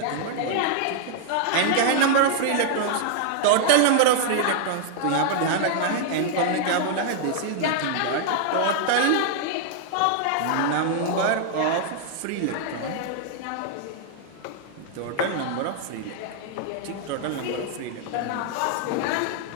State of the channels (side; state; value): both; different; correlation 0.00